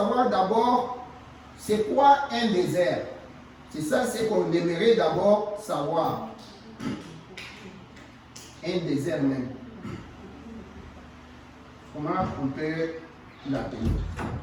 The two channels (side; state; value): both; identical; correlation 1.00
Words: d'abord c'est quoi un désert. C'est ça, c'est qu'on aimerait d'abord savoir. Un désert même. Comment on peut l'appeler?